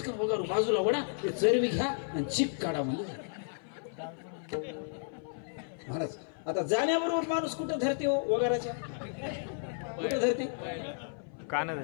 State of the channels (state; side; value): silent; right; 55 dB below the other